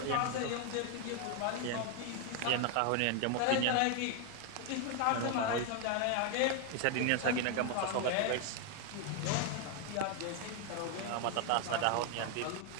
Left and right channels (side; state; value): both; different; correlation 0.01